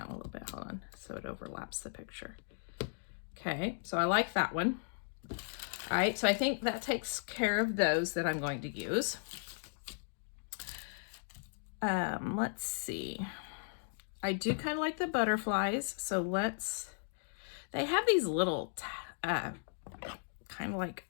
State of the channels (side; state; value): right; silent; digital silence